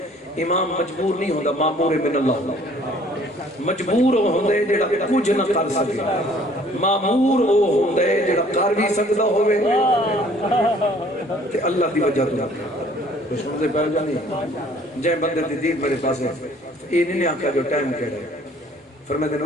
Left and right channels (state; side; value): normal; both; correlation 0.56